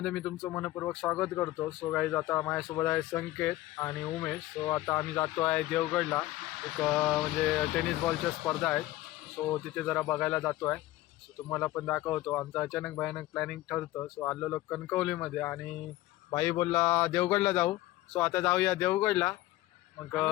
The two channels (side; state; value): right; quieter; 16.6 dB